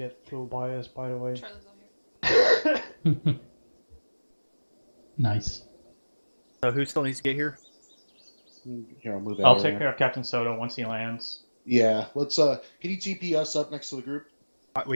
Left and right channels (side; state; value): both; inverted; correlation -1.00